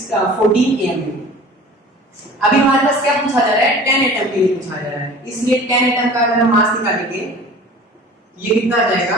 एएमयू। अभी हमारे पास क्या पूछा जा रहा है? 10 एटम के लिए पूछा जा रहा है, इसलिए 10 एटम का अगर हम मास निकालेंगे, ये कितना आ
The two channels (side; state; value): both; normal; correlation 0.43